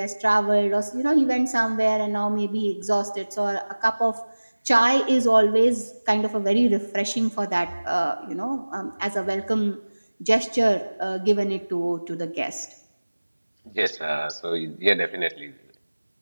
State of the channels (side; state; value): both; inverted; correlation -1.00